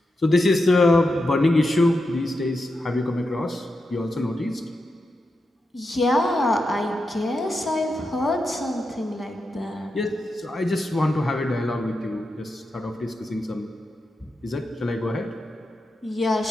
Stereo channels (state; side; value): normal; both; correlation 0.88